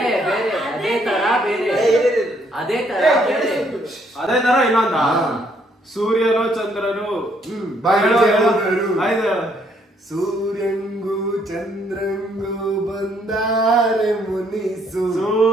ಅದೇ ತರ ಬೇರೆ ಅದೇ ತರ ಇನ್ನೊಂದ ಸೂರ್ಯನು ಚಂದ್ರನು ಸೂರ್ಯಂಗೂ ಚಂದ್ರಂಗೂ ಬಂದಾರೆ ಮುನಿಸು.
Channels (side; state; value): both; normal; correlation 0.69